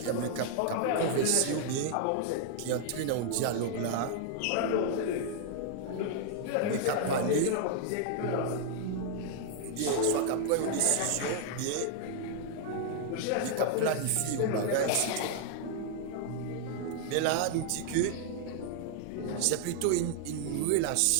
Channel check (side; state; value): both; different; correlation 0.00